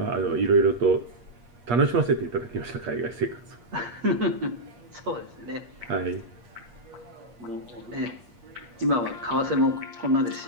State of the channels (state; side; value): late; left; 8.4 ms